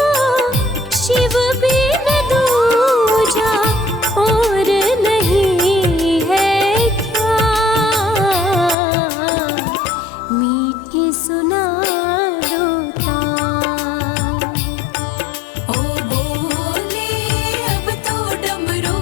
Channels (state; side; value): drops out; right; at 8.8 s